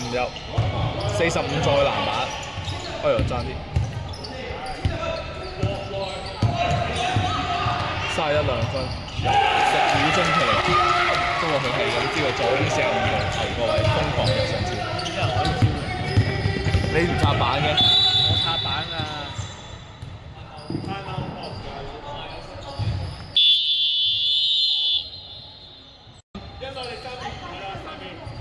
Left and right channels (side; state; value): both; identical; correlation 1.00